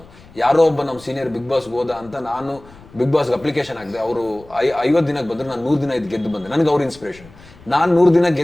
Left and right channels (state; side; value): noise; left; rumble, 23 dB below the sound